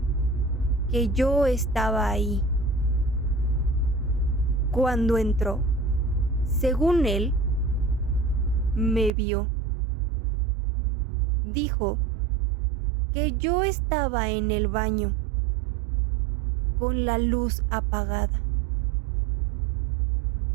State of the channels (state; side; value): drops out; left; at 9.1 s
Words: que yo estaba ahí. Cuando entró, según él, me vio. Dijo que yo estaba en el baño con la luz apagada